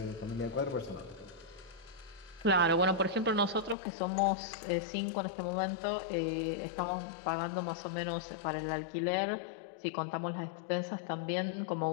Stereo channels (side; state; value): right; drops out; at 3.8 s